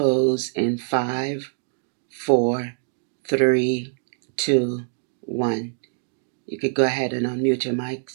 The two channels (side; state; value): left; silent; digital silence